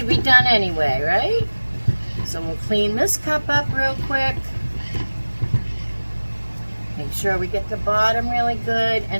be done anyway, right? So we'll clean this cup up real quick. Make sure we get the bottom really good.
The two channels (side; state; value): both; inverted; correlation -1.00